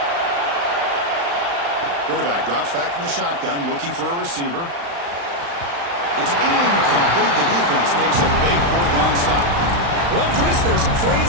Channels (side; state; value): left; late; 35 ms